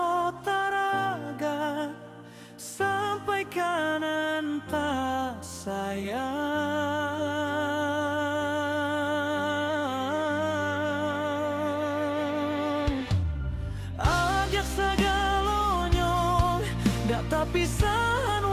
taraga sampai kanan tak sayang. Ajak segalonyo dak tapisan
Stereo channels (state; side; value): identical; both; correlation 1.00